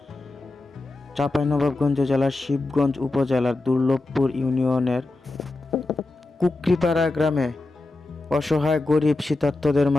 চাঁপাইনবাবগঞ্জ জেলার শিবগঞ্জ উপজেলার দুর্লভপুর ইউনিয়নের কুকরিপাড়া গ্রামে। অসহায় গরিব শীতার্তদের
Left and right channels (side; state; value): right; quieter; 3.0 dB